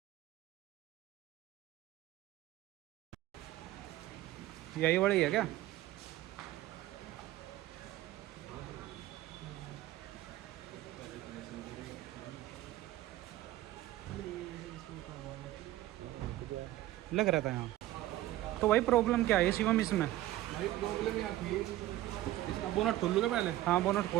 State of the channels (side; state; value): left; quieter; 15.4 dB